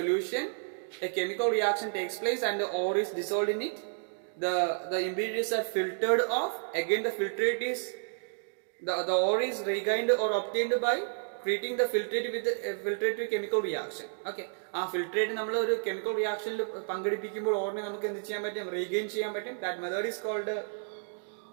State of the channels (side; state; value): left; silent; digital silence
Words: a chemical reaction takes place and the ore is dissolved in it. The impurities are filtered off. Again the filtrate is the ore is regained or obtained by treating the filtrate with a chemical reaction. Okay, ആ filtrate നമ്മൾ ഒരു chemical റിയാക്ഷനിൽ പങ്കെടുപ്പിക്കുമ്പോൾ ഓറിനെ നമുക്ക് എന്ത് ചെയ്യാൻ പറ്റും? Regain ചെയ്യാൻ പറ്റും. That method is called